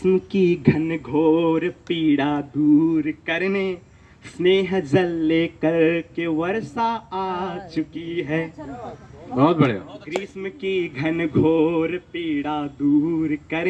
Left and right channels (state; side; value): identical; both; correlation 1.00